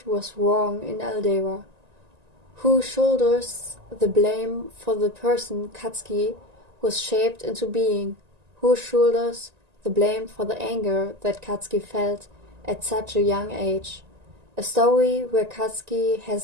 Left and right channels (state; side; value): late; left; 1.9 ms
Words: was wrong in Aldera. Who shoulders the blame for the person Katsuki was shaped into being? Who shoulders the blame for the anger that Katsuki felt at such a young age? A story where Katsuki has